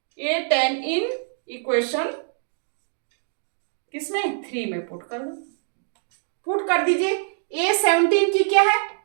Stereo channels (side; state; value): left; silent; digital silence